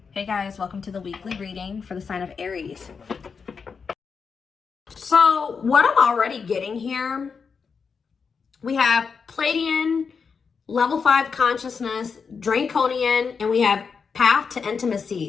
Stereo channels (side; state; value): right; quieter; 5.6 dB